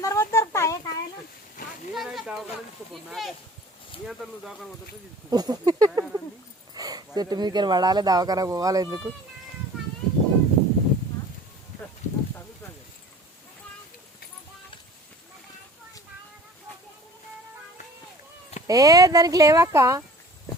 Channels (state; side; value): normal; both; correlation 0.45